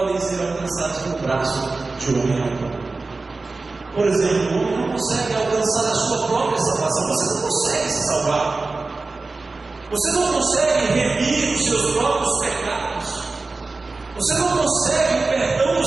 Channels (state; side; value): quieter; left; 3.6 dB